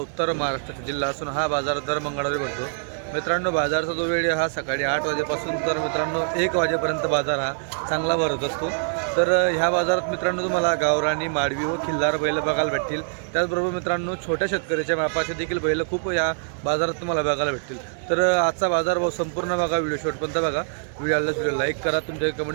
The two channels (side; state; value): left; silent; 62 dB below the other